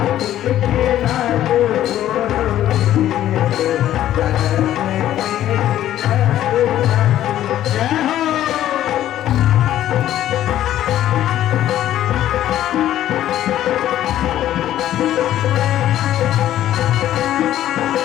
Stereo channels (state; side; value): quieter; right; 12.5 dB